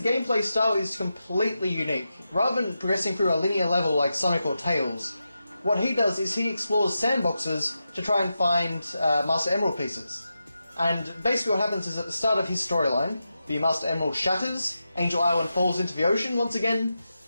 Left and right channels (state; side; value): inverted; both; correlation -0.89